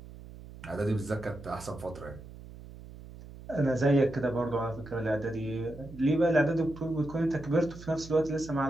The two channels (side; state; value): right; noise; hum, 16 dB below the sound